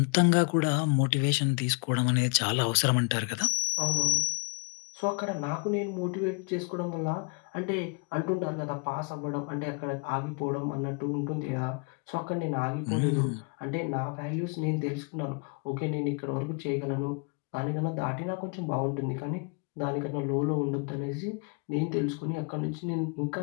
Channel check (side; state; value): right; quieter; 32.2 dB